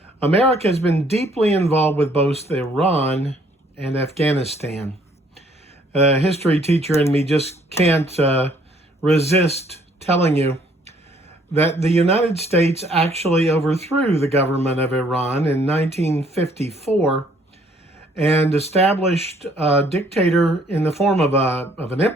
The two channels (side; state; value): both; normal; correlation 0.63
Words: America has been deeply involved with both Iran and Afghanistan. A history teacher in me just can't resist telling you that the United States actually overthrew the government of Iran in 1954 and established a dictator in the form of an